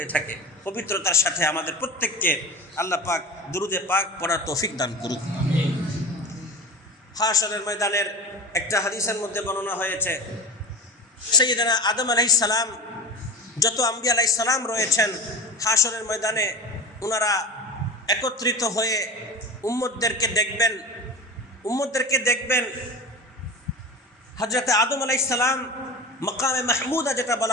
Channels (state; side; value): normal; both; correlation 0.31